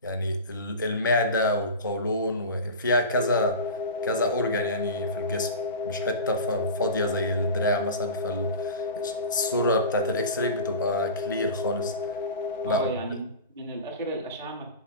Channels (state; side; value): inverted; both; correlation -0.30